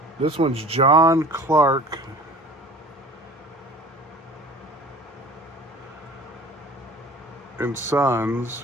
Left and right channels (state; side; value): normal; both; correlation 0.43